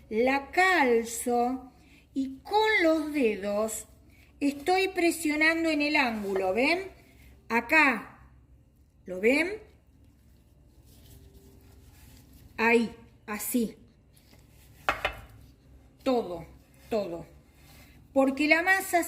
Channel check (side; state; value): both; identical; correlation 1.00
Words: La calzo y con los dedos estoy presionando en el ángulo, ¿ven? Acá, ¿lo ven? Ahí, así. Todo. Porque la masa